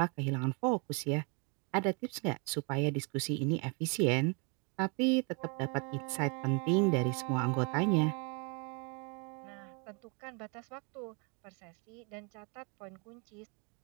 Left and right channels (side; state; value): left; quieter; 34.9 dB